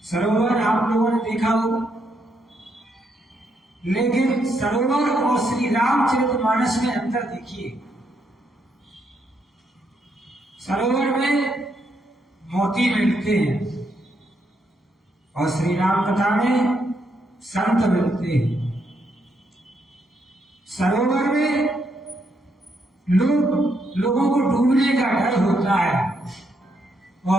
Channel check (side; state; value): both; normal; correlation 0.77